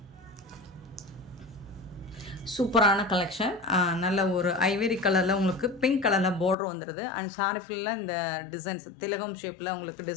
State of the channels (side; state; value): right; drops out; at 6.6 s